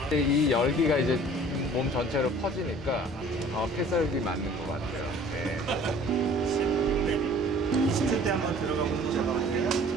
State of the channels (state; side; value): normal; both; correlation 0.50